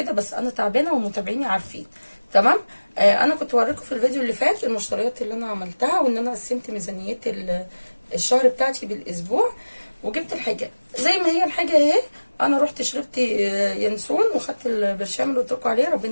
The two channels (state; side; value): inverted; both; correlation -1.00